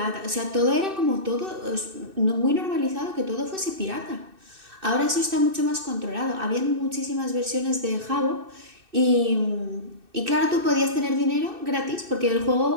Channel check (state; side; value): late; left; 2.6 ms